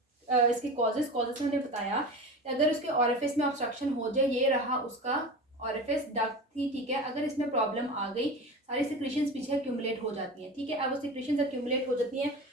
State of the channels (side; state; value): both; normal; correlation 0.30